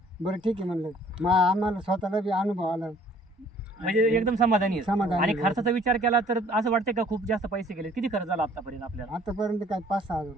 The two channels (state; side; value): normal; both; correlation 0.57